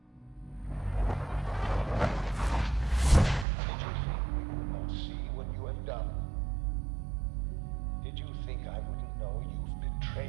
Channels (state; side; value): drops out; left; at 3.5 s